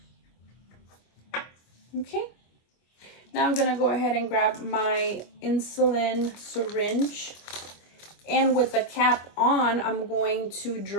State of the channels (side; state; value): right; late; 25 ms